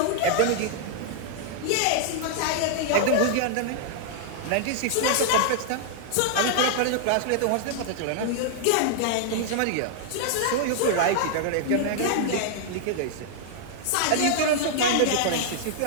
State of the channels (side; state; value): both; different; correlation -0.01